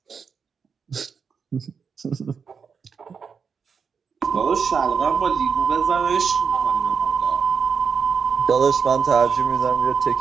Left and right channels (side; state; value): left; quieter; 6.0 dB